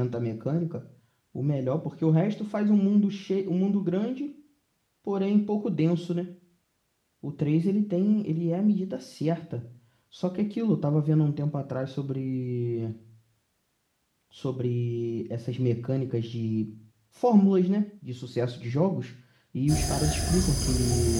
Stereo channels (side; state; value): both; identical; correlation 1.00